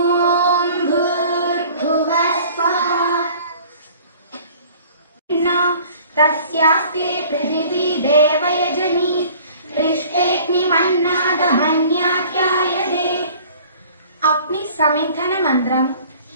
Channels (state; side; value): inverted; both; correlation -0.49